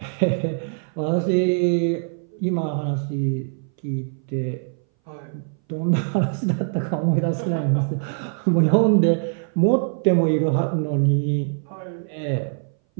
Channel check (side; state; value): left; silent; 60 dB below the other